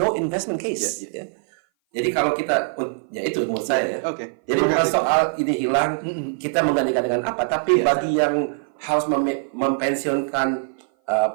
investment case. Jadi kalau kita, ya itu menurut saya ya. Jadi bukan soal ini hilang, kita menggantikan dengan apa, tapi bagi yang harus mempensiunkan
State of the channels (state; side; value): silent; left; 58 dB below the other